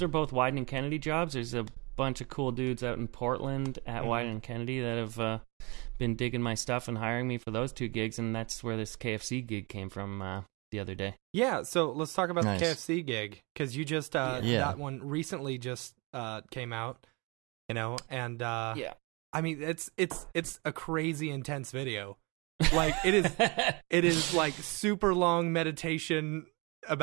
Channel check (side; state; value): left; quieter; 28.3 dB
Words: are both Wyden and Kennedy jobs. There's a bunch of cool dudes out in Portland at Wyden and Kennedy that have been digging my stuff and hiring me for those 2 gigs, and that's where this KFC gig came from the other day. Yeah, so let's talk about the KFC gig, because you just that one recently just came out, and I mean it's a crazy intense video. Like it is like super long meditation